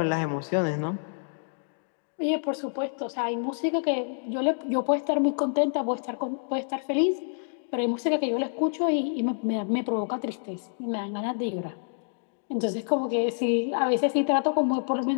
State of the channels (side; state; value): right; silent; digital silence